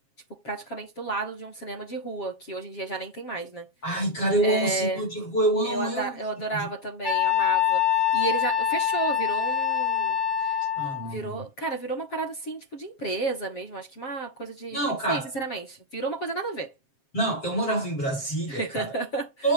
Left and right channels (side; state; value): right; late; 7.5 ms